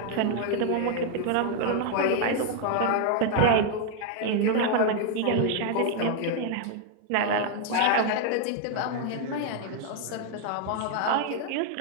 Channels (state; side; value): different; both; correlation 0.00